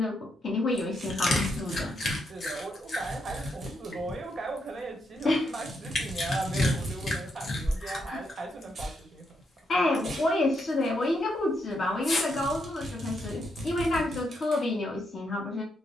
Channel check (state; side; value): normal; both; correlation 0.79